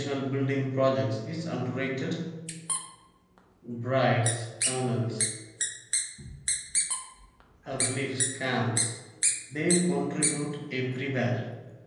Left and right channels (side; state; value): both; identical; correlation 1.00